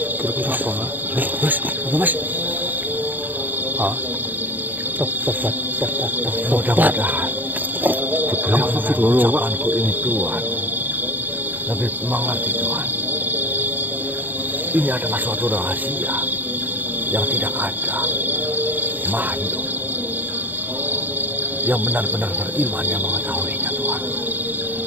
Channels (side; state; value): left; late; 0.088 ms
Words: Kira-kira apa, Mas? Apa, Mas? Hah? Mudah-mudahan ucapanku ini Tuhan lebih mengerti Tuhan. Ini adalah suatu rahasia yang tidak ada makhluk yang benar-benar beriman yang mengetahuinya Tuhan.